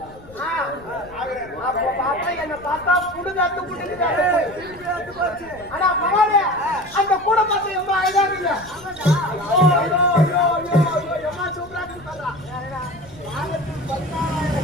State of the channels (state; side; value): noise; left; rumble, 22 dB below the sound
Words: என்ன பார்த்தா புடுங்காத்து புடுங்குது. ஆனா பரவாயில்ல, அந்த கூட பார்த்து எம்மா அழகாங்க. எம்மா சூப்பரா பண்றா.